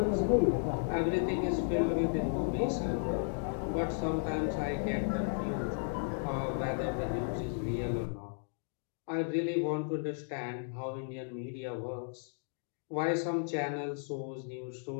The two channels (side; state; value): right; silent; digital silence